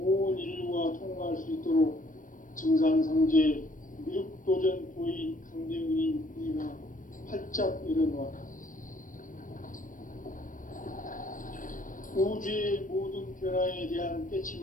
인류가 통과할 수 있도록 증산상제 미륵도전 도인 강대훈인 우리가 활짝 열어놓았다. 우주의 모든 변화에 대한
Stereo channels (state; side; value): late; right; 0.38 ms